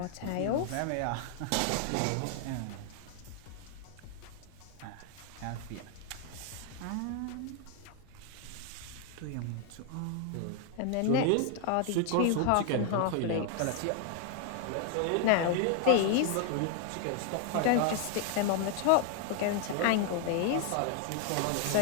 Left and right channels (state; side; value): different; both; correlation 0.00